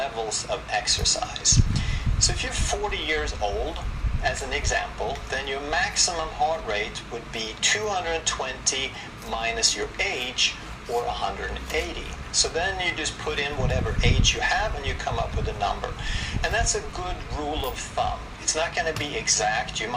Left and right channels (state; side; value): identical; both; correlation 1.00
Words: of exercise. So if you're 40 years old, as an example, then your maximum heart rate would be 220 minus your age, or 180. So then you just put in whatever age you have and you come up with a number. And that's a good rule of thumb. It's not going to be exact. You